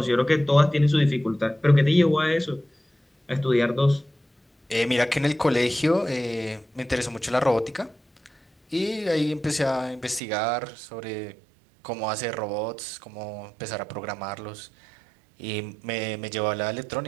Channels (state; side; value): drops out; left; at 10.2 s